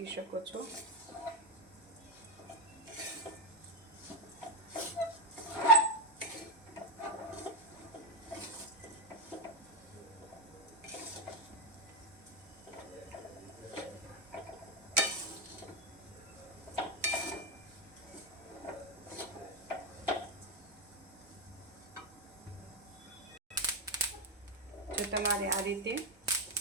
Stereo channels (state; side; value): normal; both; correlation 0.09